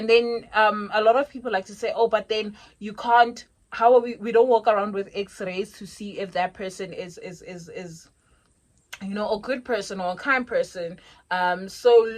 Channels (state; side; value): identical; both; correlation 1.00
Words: then a lot of people like to say, oh, but then you can't, how are we don't walk around with x-rays to see if that person is you know, a good person or a kind person. So